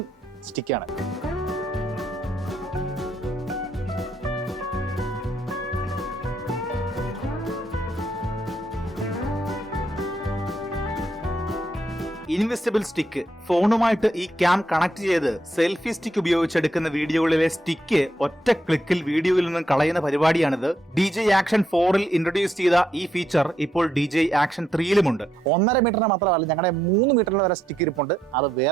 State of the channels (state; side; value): normal; both; correlation 0.78